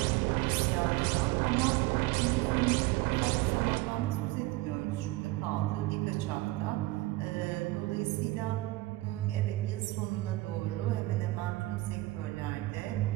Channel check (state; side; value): quieter; left; 19.6 dB